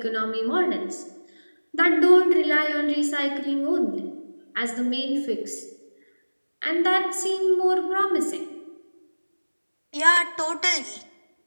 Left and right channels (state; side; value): inverted; both; correlation -1.00